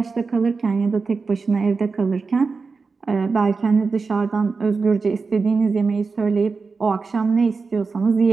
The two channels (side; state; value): left; quieter; 4.5 dB